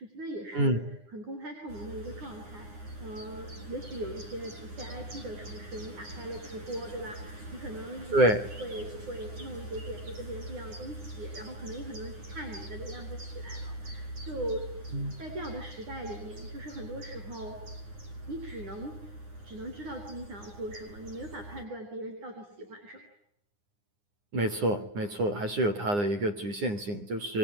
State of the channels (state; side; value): late; left; 9.8 ms